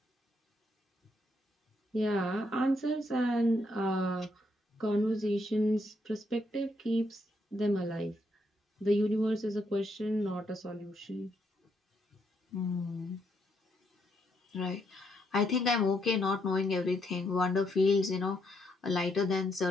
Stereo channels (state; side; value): normal; both; correlation 0.76